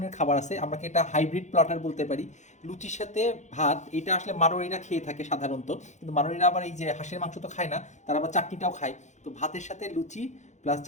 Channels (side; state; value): right; late; 0.34 ms